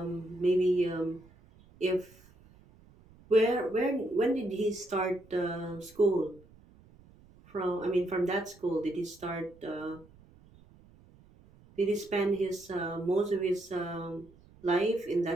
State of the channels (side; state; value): right; noise; rumble, 26 dB below the sound